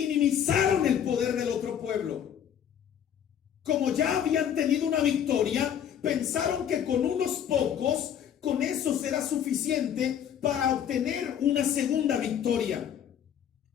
el poder del otro pueblo. Como ya habían tenido una victoria, pensaron que con unos pocos, con eso será suficiente para obtener una segunda victoria.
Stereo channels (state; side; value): quieter; right; 9.1 dB